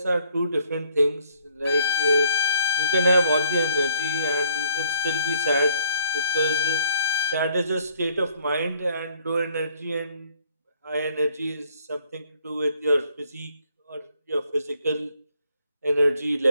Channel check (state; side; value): inverted; both; correlation -0.63